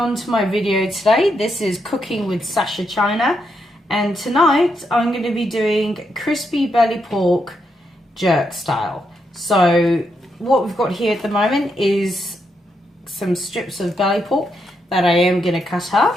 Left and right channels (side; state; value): both; normal; correlation 0.81